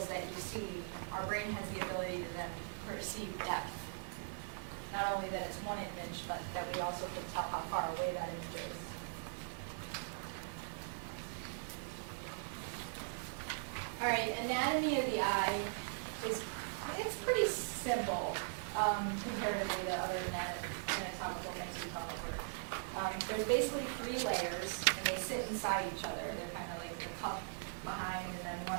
that you see, our brain has the ability to then perceive depth. Not only that it's one image, but that we also can tell how far away that image is. All right, anatomy of the eye it's pretty simple comparatively to other anatomical things we've gone over. There's basically three layers, and they sit inside each other. They're kind of like the cup behind, and then one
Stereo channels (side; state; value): left; silent; 51 dB below the other